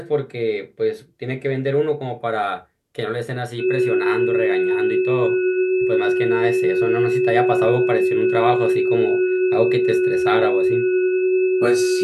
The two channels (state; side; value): identical; both; correlation 1.00